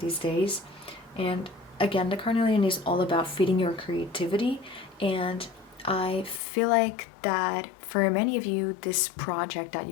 days. And again, the carnelian is all about feeding your creativity, and I feel like that for many of you, this project that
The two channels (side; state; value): right; drops out; at 6.4 s